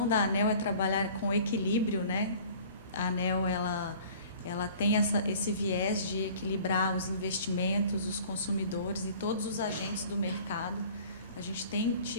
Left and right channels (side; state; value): both; inverted; correlation -0.48